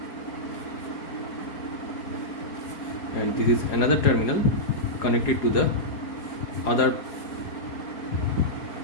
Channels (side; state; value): right; late; 4.8 ms